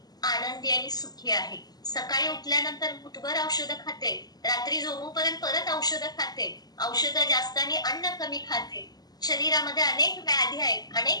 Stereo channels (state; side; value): late; right; 0.19 ms